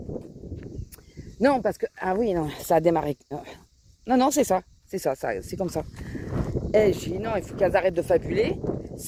non parce que ah oui non ça a démarré non c'est ça c'est comme ça. Et j'ai dit non, il faut qu'elles arrêtent de fabuler,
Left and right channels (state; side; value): identical; both; correlation 1.00